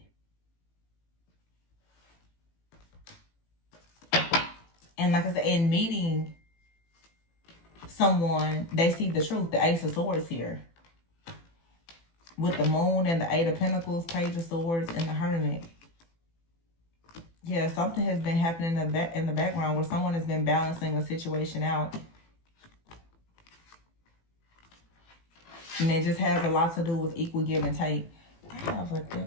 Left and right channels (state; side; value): late; right; 18 ms